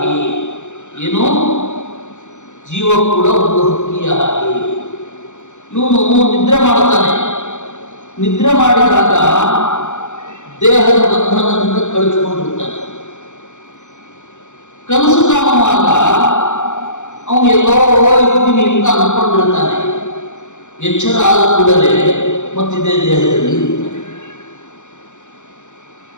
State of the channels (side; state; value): right; late; 0.84 ms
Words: ಏನು? ಜೀವ ಕೂಡ ಒಂದು ಹಕ್ಕಿಯ ಹಾಗೆ. ಇವನು ನಿದ್ರೆ ಮಾಡ್ತಾನೆ. ನಿದ್ರೆ ಮಾಡಿದಾಗ ದೇಹದ ಬಂಧನದಿಂದ ಕಳಿಸ್ಕೊಂಡಿರ್ತಾನೆ. ಕನಸು ಕಾಣುವಾಗ ಅವನು ಎಲ್ಲೋ ಇರ್ತೀನಿ ಅಂತ ಅಂದ್ಕೊಂಡಿರ್ತಾನೆ. ಎಚ್ಚರ ಆದ ಕೂಡಲೇ ಮತ್ತಿದೇ ದೇಹದಲ್ಲಿ ಇರ್ತಾನೆ.